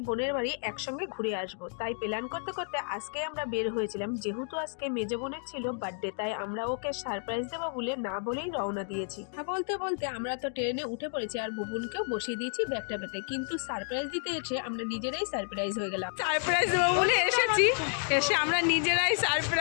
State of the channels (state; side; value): silent; right; 57 dB below the other